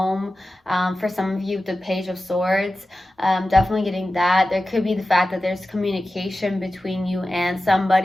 For some of you, the Page of Swords, definitely getting that. There could be the fact that there's communication between you and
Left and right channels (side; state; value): both; normal; correlation 0.94